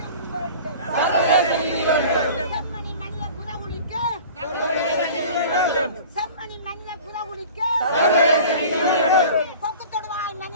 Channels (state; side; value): inverted; both; correlation -0.42